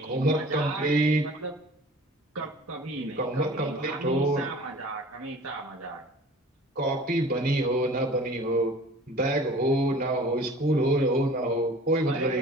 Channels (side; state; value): both; normal; correlation 0.46